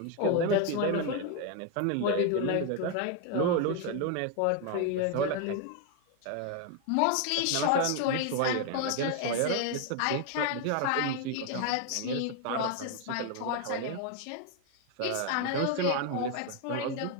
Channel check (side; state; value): both; different; correlation 0.01